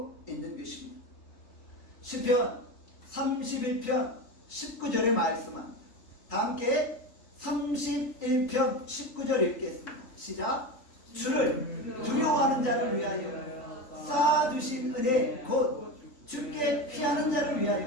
있는 것입니다. 시편 31편 19절에 말씀합니다. 다 함께 31편 19절 읽겠습니다. 시작. 주를 두려워하는 자를 위하여 쌓아두신 은혜 곧 주께 피하는 자를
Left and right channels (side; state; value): right; late; 3.9 ms